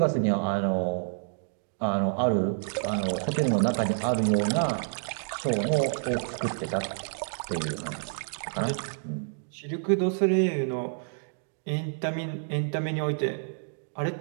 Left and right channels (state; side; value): silent; left; digital silence